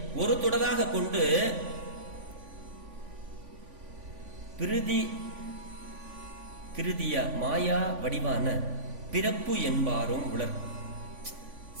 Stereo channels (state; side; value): late; left; 3.5 ms